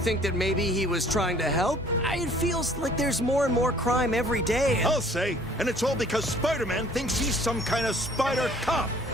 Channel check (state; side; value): normal; both; correlation 0.55